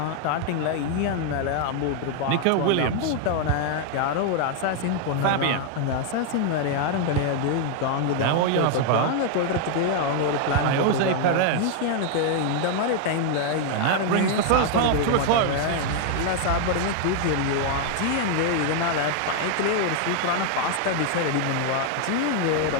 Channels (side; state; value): both; different; correlation 0.00